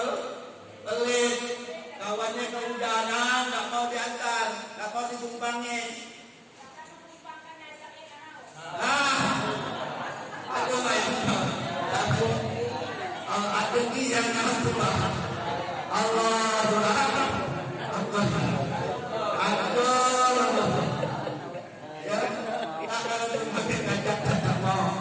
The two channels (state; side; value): identical; both; correlation 1.00